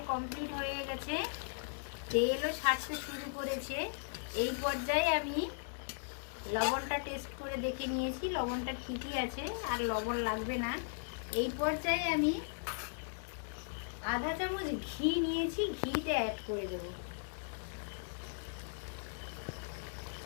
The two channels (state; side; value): silent; right; digital silence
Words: কমপ্লিট হয়ে গেছে, তেলও ছাড়তে শুরু করেছে। এই পর্যায়ে আমি লবণটা টেস্ট করে দেখে নিয়েছি, লবণটা ঠিকই আছে, আর লবণ লাগবে না। এই পর্যায়ে আমি আধা চামচ ঘি নিয়েছি, ঘিটা অ্যাড করে দেব।